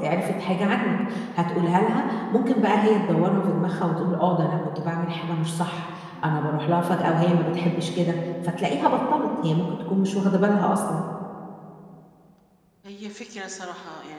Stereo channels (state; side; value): identical; both; correlation 1.00